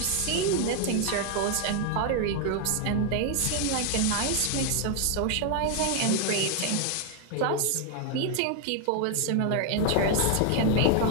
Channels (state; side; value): different; both; correlation 0.00